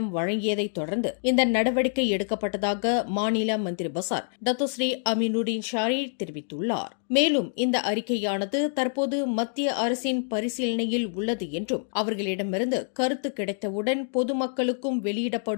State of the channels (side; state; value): right; silent; digital silence